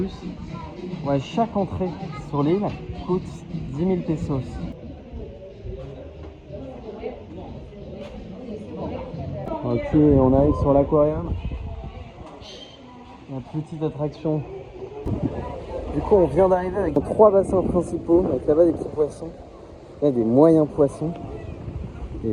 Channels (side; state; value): both; identical; correlation 1.00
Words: Ouais, chaque entrée sur l'île coûte 10 000 pesos. Ok, on arrive sur l'aquarium. La petite attraction. Du coup, on vient d'arriver avec 3 bassins principaux, avec là-bas des petits poissons, là des moyens poissons, et